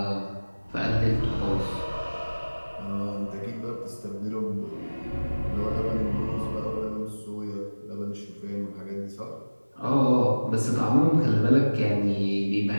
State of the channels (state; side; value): inverted; both; correlation -1.00